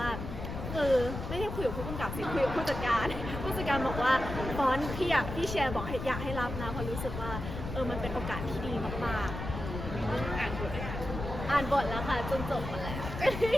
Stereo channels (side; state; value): left; noise; rumble, 6 dB below the sound